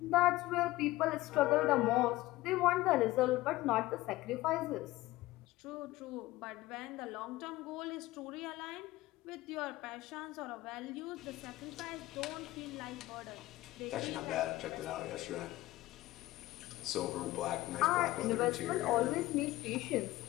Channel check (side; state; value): right; quieter; 17.8 dB